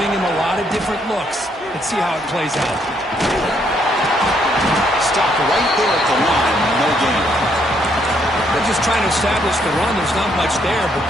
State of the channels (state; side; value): normal; both; correlation 0.71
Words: him a lot of different looks. Let's see how it plays out. Stop right there at the line. No gain. They're just trying to establish the run. There's not much there, but